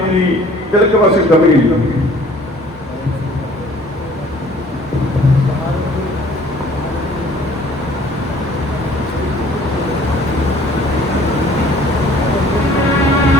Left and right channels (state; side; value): normal; both; correlation 0.53